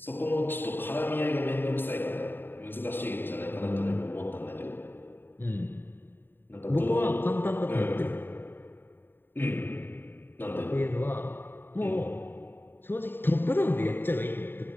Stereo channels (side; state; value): right; late; 0.097 ms